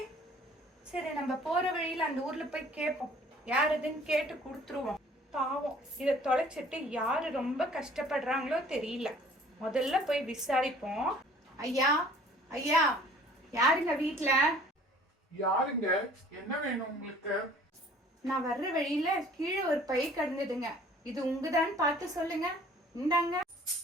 சரி, நம்ம போற வழியில அந்த ஊர்ல போய் கேட்போம். யாருதுன்னு கேட்டு கொடுத்துருவோம். பாவம், இதை தொலைச்சிட்டு யாரு ரொம்ப கஷ்டப்படுறாங்களோ தெரியல. முதல்ல போய் விசாரிப்போம். ஐயா ஐயா, யாருங்க வீட்டுல? யாருங்க? என்ன வேணும் உங்களுக்கு? நான் வர்ற வழியில கீழே ஒரு பை கிடந்ததுங்க. இது உங்கதான் பார்த்து சொல்லுங்க. இந்தாங்க.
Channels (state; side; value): normal; both; correlation 0.52